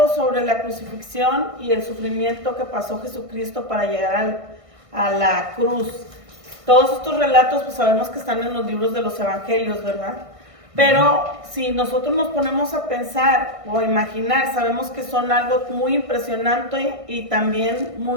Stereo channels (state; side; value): late; left; 1.6 ms